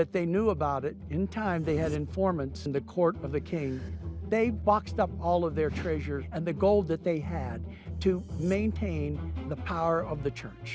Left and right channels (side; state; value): both; identical; correlation 1.00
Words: they knew about it, in time they had informants in the court of the king. They boxed up all of their treasures and the gold that they had to maintain the power of the